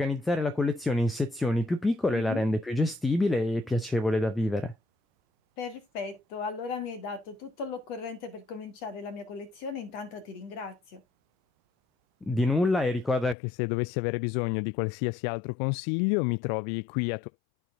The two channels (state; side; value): drops out; right; at 13.4 s